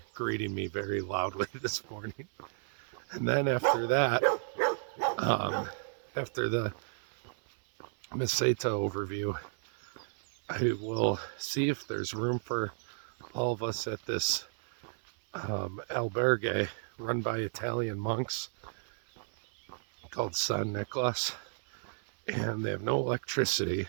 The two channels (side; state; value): left; silent; 56 dB below the other